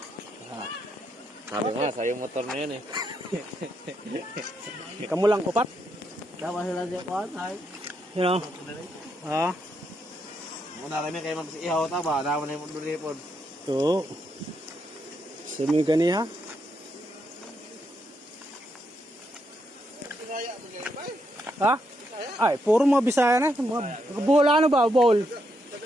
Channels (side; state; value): both; normal; correlation 0.79